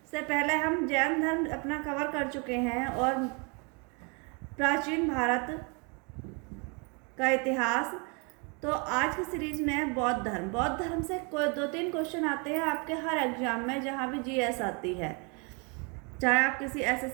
से पहले हम जैन धर्म अपना कवर कर चुके हैं और प्राचीन भारत का इतिहास। तो आज की सीरीज में है बौद्ध धर्म। बौद्ध धर्म से कोई 2-3 क्वेश्चन आते हैं आपके हर एग्जाम में, जहाँ भी जीएस आती है, चाहे आप किसी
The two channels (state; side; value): quieter; left; 33.3 dB